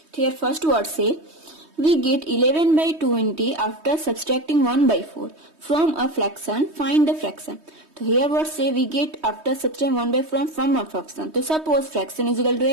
Here first word say, we get 11 by 20 after subtracting 1 by 4 from a fraction, find the fraction. So here what say, we get after subtracting 1 by 4 from a fraction. So suppose fraction is equal to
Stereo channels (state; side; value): late; left; 3.2 ms